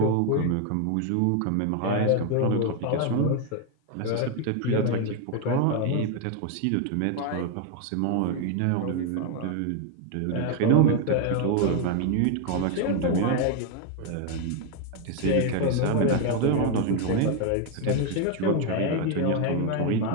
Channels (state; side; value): different; both; correlation 0.01